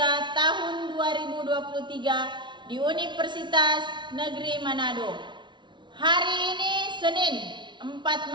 tahun 2023 di Universitas Negeri Manado. Hari ini Senin 4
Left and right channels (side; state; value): left; late; 0.23 ms